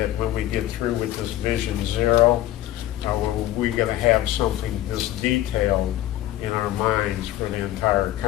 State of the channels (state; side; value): quieter; right; 14.2 dB